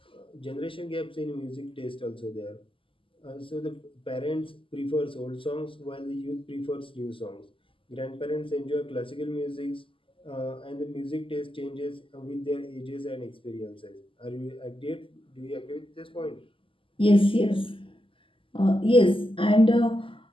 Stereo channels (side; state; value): right; late; 0.25 ms